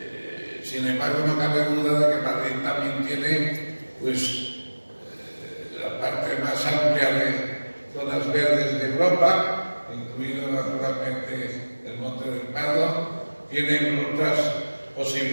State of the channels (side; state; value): both; inverted; correlation -1.00